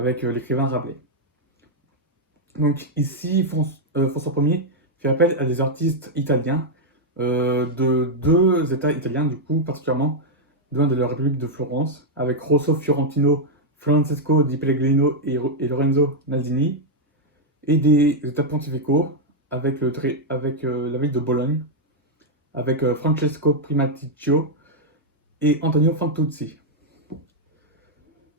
l'écrivain Rabelais. Donc ici, François Ier fait appel à des artistes italiens de deux États italiens, du coup, particulièrement de la République de Florence, avec Rosso Fiorentino, Francesco di Pellegrino et Lorenzo Naldini, et des États pontificaux avec la ville de Bologne, avec Francesco Primaticcio et Antonio Fantuzzi.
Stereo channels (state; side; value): normal; both; correlation -0.03